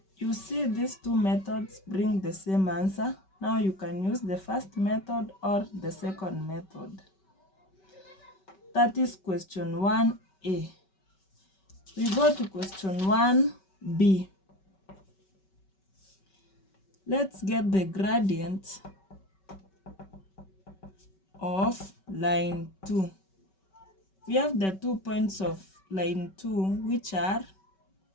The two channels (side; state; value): right; late; 5.2 ms